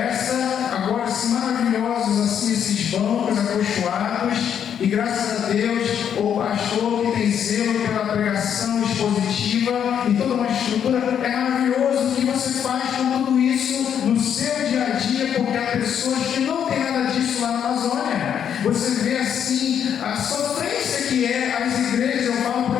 agora assim maravilhosos assim esses bancos acolchoados, e graças a Deus o pastor que tem zelo pela pregação expositiva e toda uma estrutura, é maravilhoso o que você faz com tudo isso no seu dia a dia, porque há pessoas que não tem nada disso lá na Amazônia. Você vê assim a sofrência que é as igrejas. Eu falo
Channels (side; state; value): right; quieter; 8.6 dB